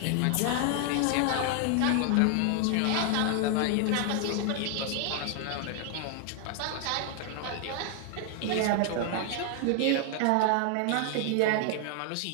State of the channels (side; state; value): both; different; correlation 0.00